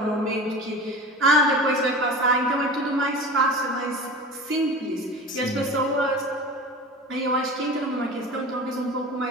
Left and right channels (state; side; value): normal; both; correlation 0.35